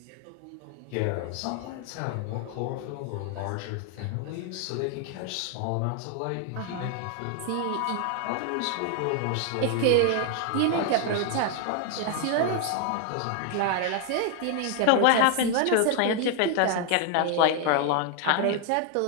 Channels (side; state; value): both; different; correlation 0.00